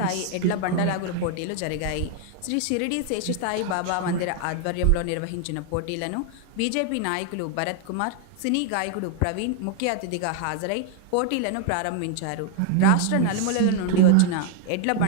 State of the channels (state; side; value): different; both; correlation 0.00